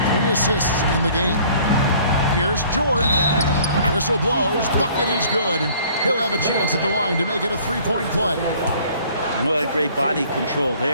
3 assists in the game. Here's George. Whistle blows. Bucket is good, and he'll have a chance at the line to make it a 3-point play. Well, great body control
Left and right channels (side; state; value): both; inverted; correlation -0.54